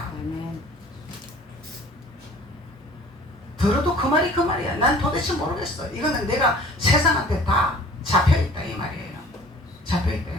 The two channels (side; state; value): both; normal; correlation 0.49